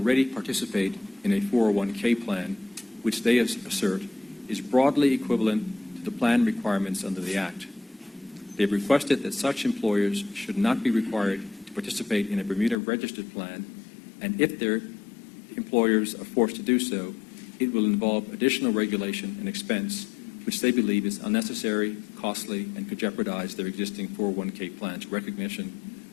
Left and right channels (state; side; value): drops out; right; at 12.8 s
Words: participate in a 401k plan, which they assert is broadly equivalent to the plan requirements under the Act. They have requested that such employers should not be required to participate in a Bermuda registered plan, and if their employers are forced to do so, it will involve additional regulation and expense, which they believe is unnecessary, costly, and could jeopardize their existing 401k plans recognition